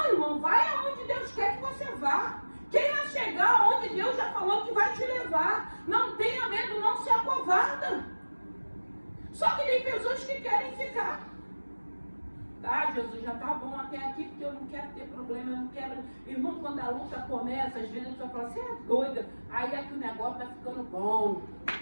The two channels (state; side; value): inverted; both; correlation -1.00